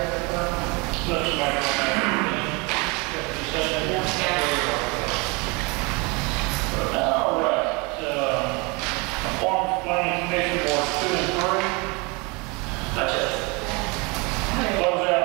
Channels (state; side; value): quieter; left; 28.2 dB